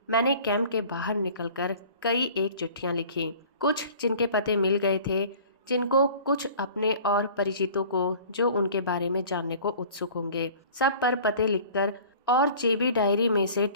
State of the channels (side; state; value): both; inverted; correlation -0.46